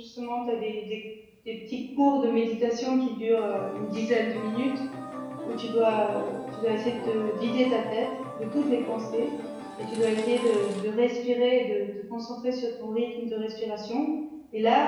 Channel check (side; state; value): both; identical; correlation 1.00